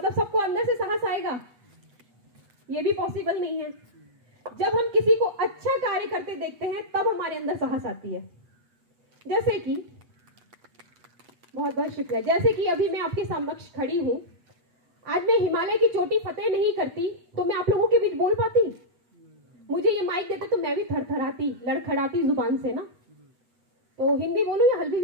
सबको अंदर से साहस आएगा? ये भी पॉसिबल नहीं है। जब हम किसी को अच्छा कार्य करते देखते हैं तब हमारे अंदर साहस आती है। जैसे कि बहुत बहुत शुक्रिया, जैसे कि अभी मैं आपके समक्ष खड़ी हूं, आज मैं हिमालय की चोटी फतेह नहीं करती तो मैं आप लोगों के बीच बोल पाती? मुझे ये माइक देते तो मैं भी थरथराती, लड़खड़ाती जुबान से ना। तो हिंदी बोलूं या हल्बी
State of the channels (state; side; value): late; left; 8.1 ms